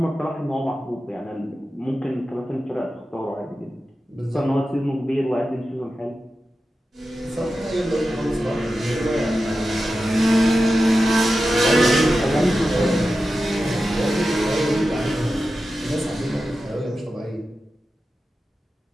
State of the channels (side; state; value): both; normal; correlation 0.92